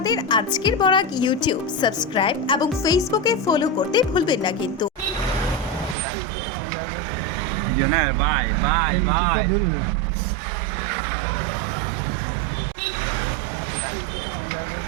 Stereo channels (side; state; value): left; drops out; at 6.0 s